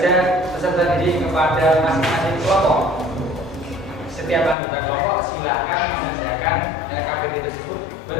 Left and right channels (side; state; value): right; drops out; at 4.5 s